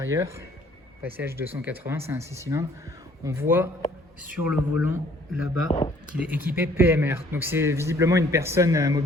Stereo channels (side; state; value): both; normal; correlation 0.59